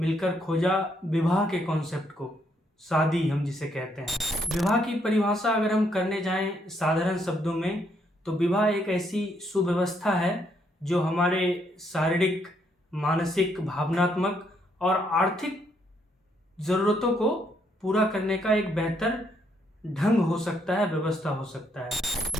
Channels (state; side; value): normal; both; correlation 0.73